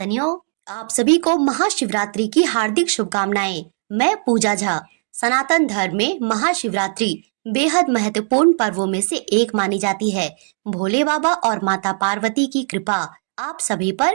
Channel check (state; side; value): silent; left; digital silence